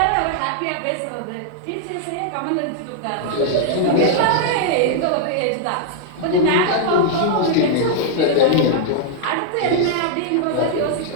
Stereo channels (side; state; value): both; different; correlation -0.01